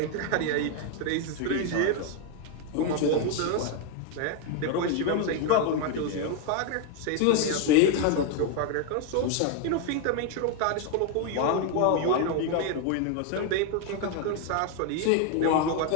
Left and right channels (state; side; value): different; both; correlation 0.01